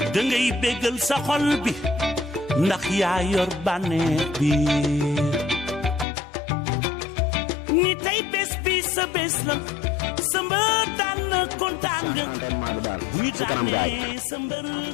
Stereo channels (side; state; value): right; drops out; at 6.1 s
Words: dangay bégal sa xol bi ndax yaa yor bànneex bi ni tey bés bi sa bés la sa mbër daan na kontaan nga bu ñu daanee sa mbër